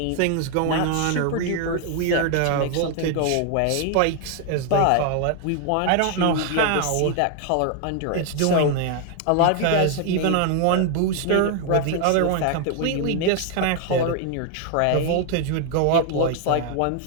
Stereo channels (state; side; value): different; both; correlation 0.00